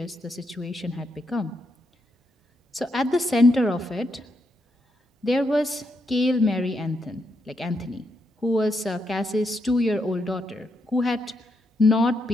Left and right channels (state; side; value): normal; both; correlation 0.80